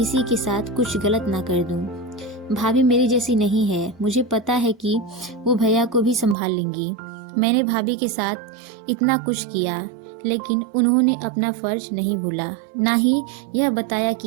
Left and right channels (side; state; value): left; drops out; at 6.4 s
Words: के साथ कुछ गलत ना कर दूं। भाभी मेरी जैसी नहीं है। मुझे पता है कि वो भैया को भी संभाल लेंगी। मैंने भाभी के साथ इतना कुछ किया, लेकिन उन्होंने अपना फर्ज नहीं भूला, ना ही यह बताया